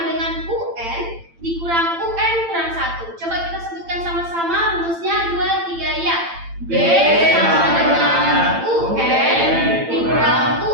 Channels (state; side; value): late; left; 8.9 ms